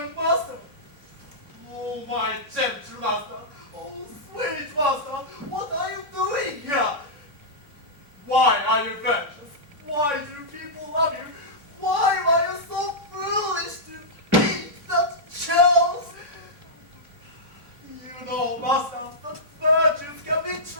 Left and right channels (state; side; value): late; left; 3.5 ms